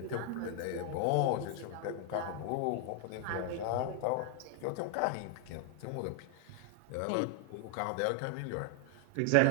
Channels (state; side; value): different; both; correlation 0.00